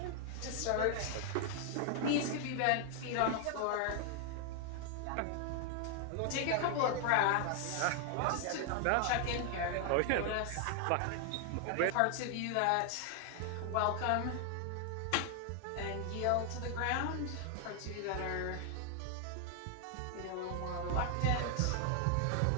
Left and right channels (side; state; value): both; different; correlation 0.00